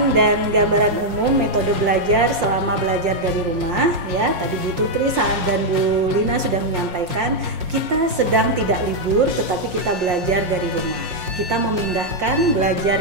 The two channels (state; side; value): late; left; 5.7 ms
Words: dan gambaran umum metode belajar selama belajar dari rumah ya. Tadi Bu Tutri dan Bu Lina sudah menyampaikan kita sedang tidak libur tetapi kita belajar dari rumah. Kita memindahkan belajar